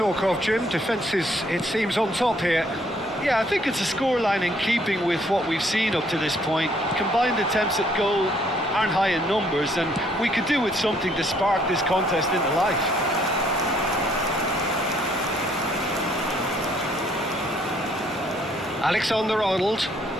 of, Jim. Defence is, it seems, on top here. Yeah, I think it's a scoreline in keeping with what we've seen up to this point. Combined attempts at goal aren't high in numbers, and we could do with something to spark this contest into life. Alexander-Arnold.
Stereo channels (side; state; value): both; normal; correlation 0.65